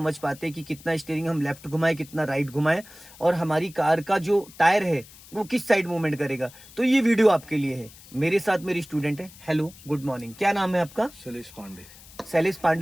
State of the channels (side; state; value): left; noise; hiss, 21 dB below the sound